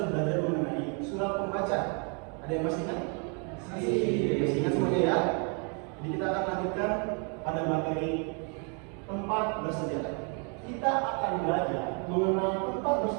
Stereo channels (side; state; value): left; quieter; 37.2 dB